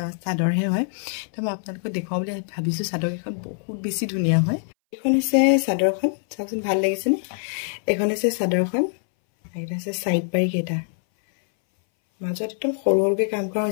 চাদৰহে হয় তো মই আপোনালোকক দেখাও বুলি ভাবিছো চাদৰ কিখন বহুত বেছি ধুনিয়া হয় এখন হৈছে চাদৰখন চাওকচোন ভাল লাগিছে নে এখন হৈছে চাদৰখন এটা আছে সাইড পাৰি কেটা মাজত একদম সৰুৰকে কাম কৰা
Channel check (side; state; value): right; silent; 61 dB below the other